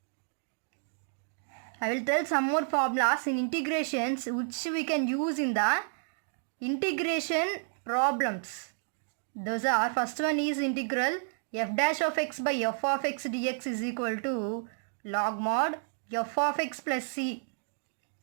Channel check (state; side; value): silent; left; digital silence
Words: I will tell some more formulas in integrations which we can use in the integration problems. Those are, first one is integral f dash of x by f of x dx is equal to log mod f of x plus c.